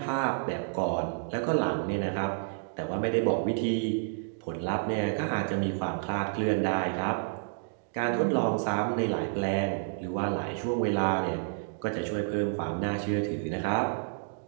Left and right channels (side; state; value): left; silent; digital silence